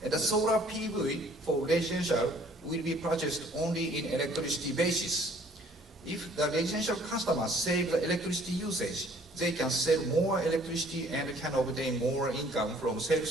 And the solar PV for residential will be purchased only in electricity basis. If the residential customers save the electricity usage, they can sell more electricity and can obtain more income from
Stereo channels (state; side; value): normal; both; correlation 0.57